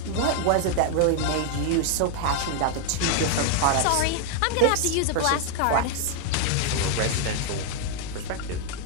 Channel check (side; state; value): both; different; correlation 0.00